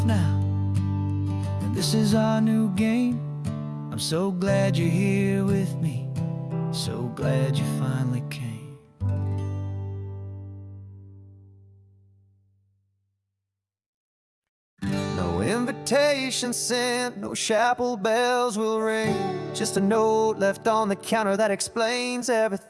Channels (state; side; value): identical; both; correlation 1.00